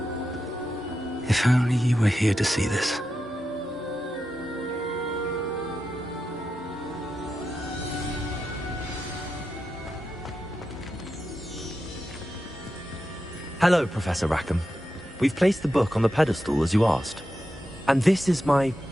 If only you were here to see this. Hello, Professor Rackham. We've placed the book on the pedestal as you asked. And this is my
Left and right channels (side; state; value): both; normal; correlation 0.89